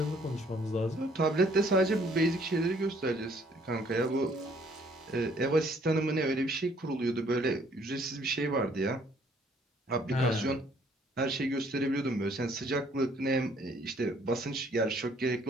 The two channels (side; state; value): both; normal; correlation 0.62